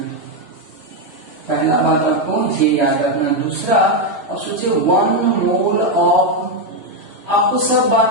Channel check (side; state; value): left; late; 3.0 ms